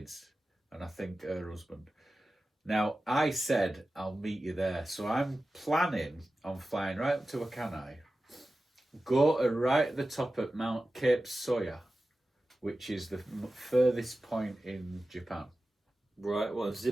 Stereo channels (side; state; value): both; normal; correlation 0.94